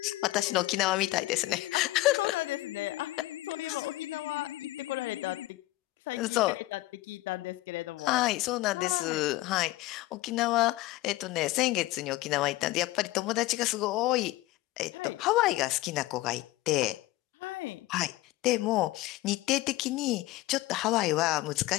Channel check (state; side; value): quieter; right; 18.2 dB